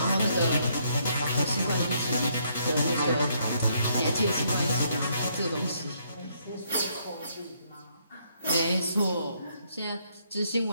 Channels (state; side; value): inverted; both; correlation -0.71